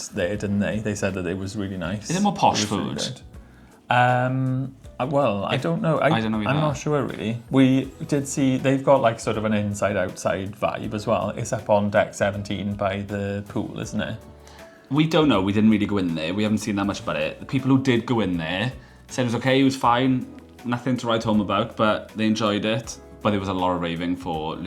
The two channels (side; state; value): both; identical; correlation 1.00